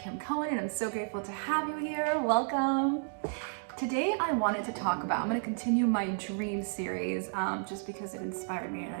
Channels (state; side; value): silent; left; digital silence